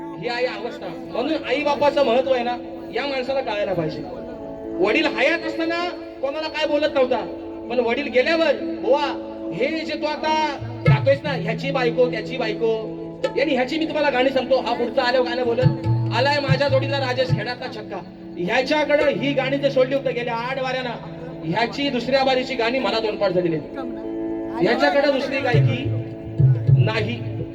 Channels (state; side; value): identical; both; correlation 1.00